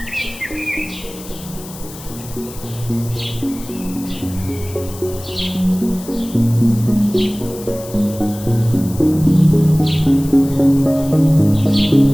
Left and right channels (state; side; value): noise; left; hiss, 16 dB below the sound